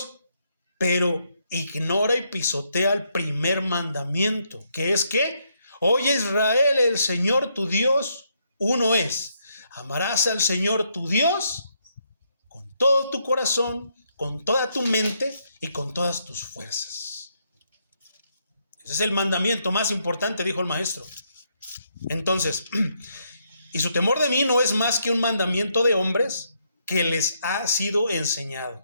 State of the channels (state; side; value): inverted; both; correlation -0.76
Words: pero ignora y pisotea el primer mandamiento, que es que, oye Israel, el Señor tu Dios, uno es. Amarás al Señor tu Dios con todo tu corazón, con toda tu mente y con todas tus fuerzas. Ese es el mandamiento más importante, dijo el maestro. Entonces, y su temor de mí no es más que un mandamiento de hombres que les ha sido enseñado.